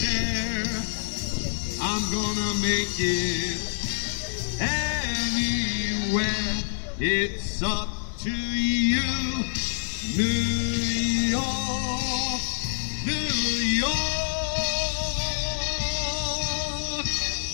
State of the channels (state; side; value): silent; right; digital silence